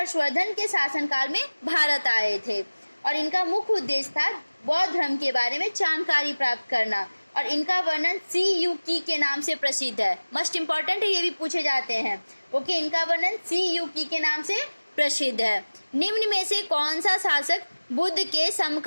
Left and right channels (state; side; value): inverted; both; correlation -1.00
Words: के शासनकाल में भारत आए थे और इनका मुख्य उद्देश्य था बौद्ध धर्म के बारे में जानकारी प्राप्त करना और इनका वर्णन सी यू की के नाम से प्रसिद्ध है। मस्ट इम्पॉर्टेंट है, ये भी पूछे जाते हैं। ओके, इनका वर्णन सी यू की के नाम से प्रसिद्ध है। निम्न में से कौन सा शासक बुद्ध के